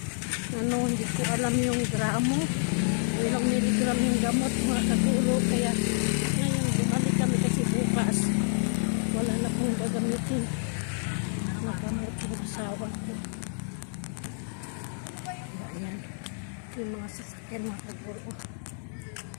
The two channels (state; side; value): silent; right; 59 dB below the other